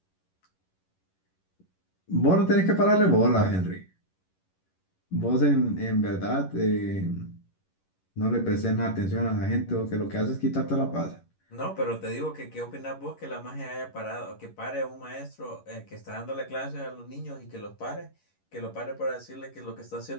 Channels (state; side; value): late; right; 11 ms